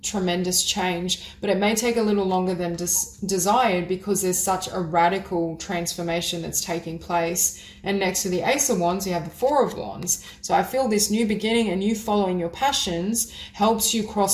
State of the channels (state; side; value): identical; both; correlation 1.00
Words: tremendous change, but it may take a little longer than desired, because there's such a radical transformation that's taking place. And next to the Ace of Wands, you have the Four of Wands. So I feel this new beginning and you following your passions helps you